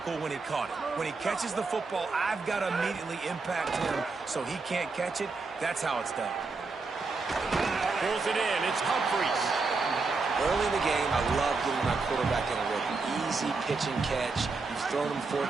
when he caught it. When he catches the football, I've got to immediately impact him so he can't catch it. That's how it's done. Pulls it in. It's Humphries. Early in the game, I love getting my quarterback in a rhythm. Easy pitch and catch. You've thrown him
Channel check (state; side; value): quieter; left; 4.1 dB